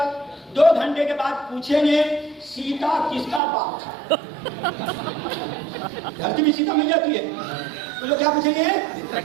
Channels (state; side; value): drops out; left; at 3.4 s